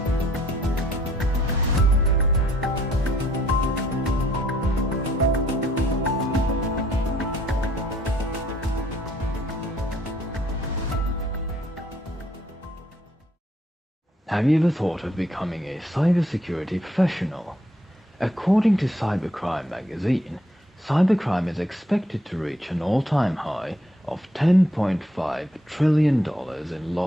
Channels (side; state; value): both; normal; correlation 0.67